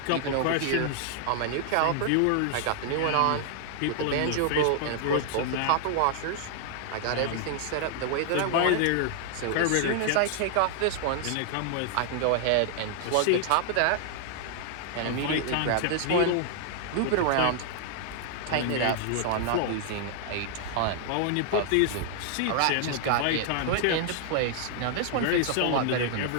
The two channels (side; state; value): both; different; correlation 0.00